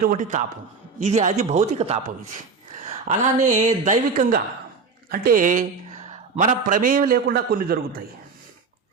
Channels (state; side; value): quieter; left; 4.9 dB